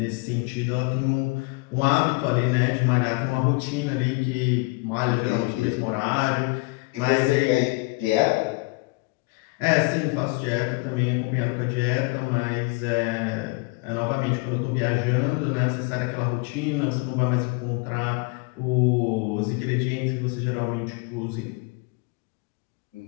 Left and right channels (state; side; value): quieter; right; 27.1 dB